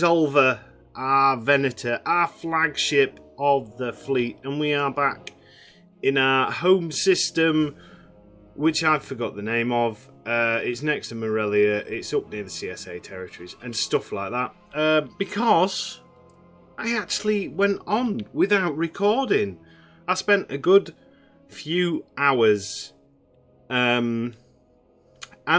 our Venator, our flagship of the fleet, and we are back in our home system, which I forgot the name of. It's next to Morelia. It's up near the CSA territories and stuff like that. Because I actually went on without recording. I spent a good few hours, and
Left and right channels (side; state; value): both; identical; correlation 1.00